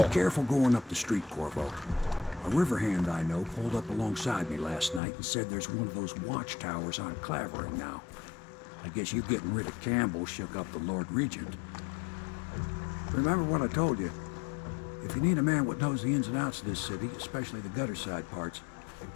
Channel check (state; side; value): drops out; right; at 5.0 s